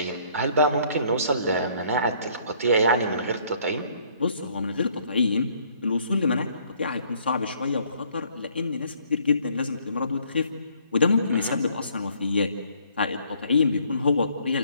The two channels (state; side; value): inverted; both; correlation -0.63